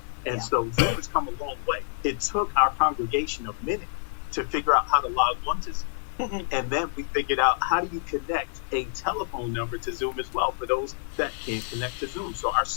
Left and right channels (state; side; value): silent; right; 60 dB below the other